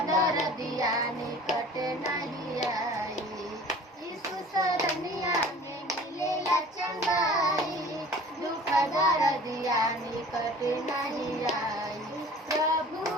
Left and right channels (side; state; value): both; normal; correlation 0.45